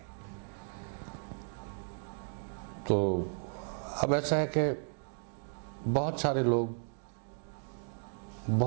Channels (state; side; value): silent; left; 55 dB below the other